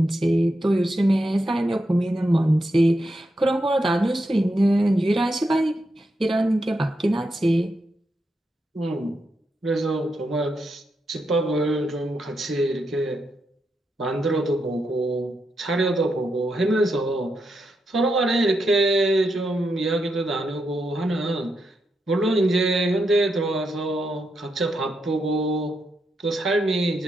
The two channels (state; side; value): normal; both; correlation 0.84